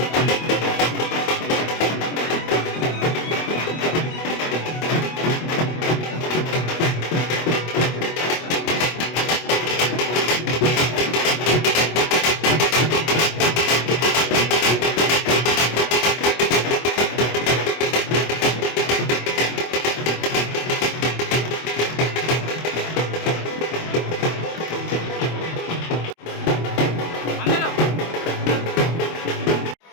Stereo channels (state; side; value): late; right; 24 ms